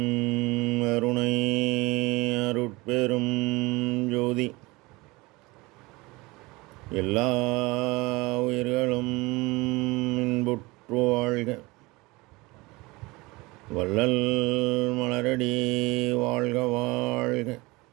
அருணை அருட்பெரும் ஜோதி எல்லா உயிர்களும் இன்புற்று வாழ்க. வள்ளல் மலரடி வாழ்க வாழ்க.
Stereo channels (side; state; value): left; quieter; 22.8 dB